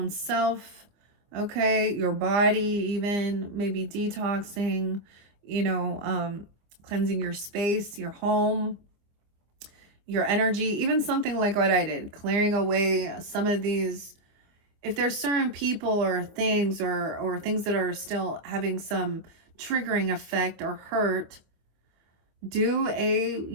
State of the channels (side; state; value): left; late; 24 ms